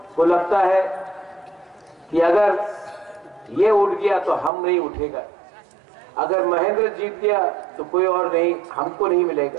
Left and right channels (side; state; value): left; drops out; at 4.5 s